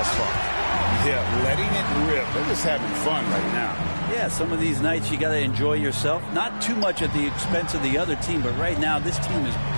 far. Yeah, letting it rip. They're just having fun right now. Yeah, some of these nights you got to enjoy yourself. Not too much at the expense of the other team, but right now this team is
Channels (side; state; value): both; inverted; correlation -1.00